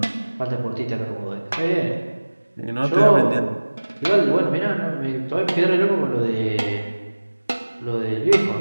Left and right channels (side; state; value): both; inverted; correlation -1.00